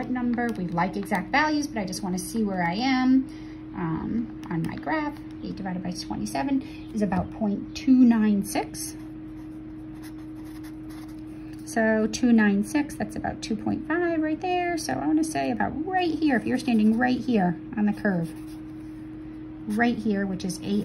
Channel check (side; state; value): both; identical; correlation 1.00